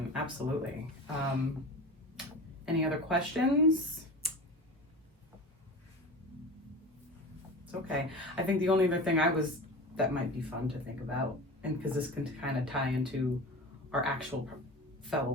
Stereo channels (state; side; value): normal; both; correlation 0.32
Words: Absolutely. Any other questions? It's okay. I think the only other thing that might be fun to think about, and because this can kind of tie into our actual